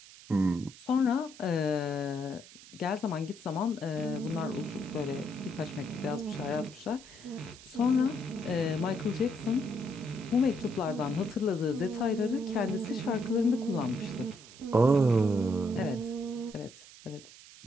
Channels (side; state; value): right; noise; hiss, 19 dB below the sound